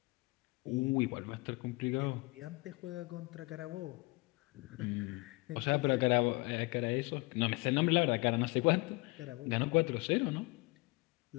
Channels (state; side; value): quieter; right; 25.1 dB